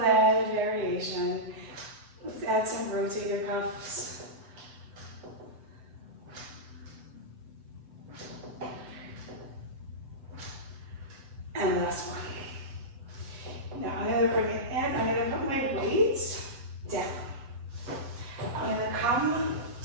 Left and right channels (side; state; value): left; late; 7.2 ms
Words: variation. Let's add some rotator cuffs. And last one. Now I'm going to bring it in. I'm going to put my weights down. I'm going to come